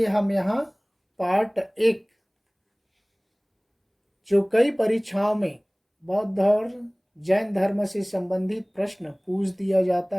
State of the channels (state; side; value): identical; both; correlation 1.00